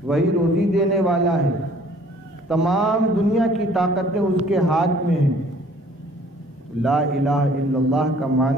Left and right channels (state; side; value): normal; both; correlation 0.56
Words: وہی روزی دینے والا ہے، تمام دنیا کی طاقتیں اس کے ہاتھ میں ہیں۔ لا الہ الا اللہ کا